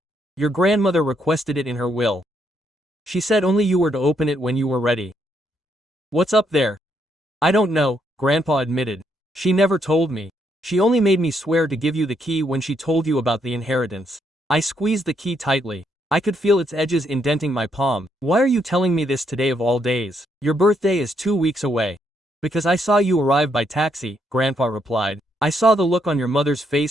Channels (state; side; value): normal; both; correlation 0.75